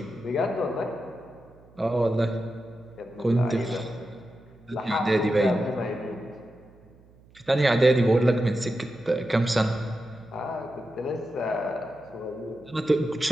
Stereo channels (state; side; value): noise; right; hum, 27 dB below the sound